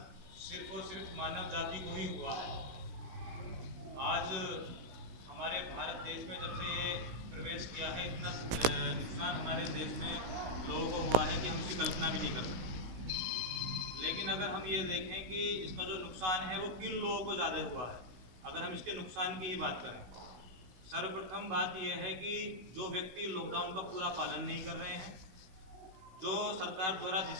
सिर्फ और सिर्फ मानव जाति को ही हुआ है। आज हमारे भारत देश में जब से ये प्रवेश किया है, इतना नुकसान हमारे देश में लोगों को हुआ है कि हम इसकी कल्पना भी नहीं कर सकते। लेकिन अगर हम ये देखें कि इसका जो नुकसान है वो किन लोगों को ज़्यादा हुआ है, अगर हम इसके नुकसान की ही बात करें, सर्वप्रथम बात यह है कि जो व्यक्ति लॉकडाउन का पूरा पालन नहीं कर रहे हैं, जो सरकार द्वारा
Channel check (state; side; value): late; left; 16 ms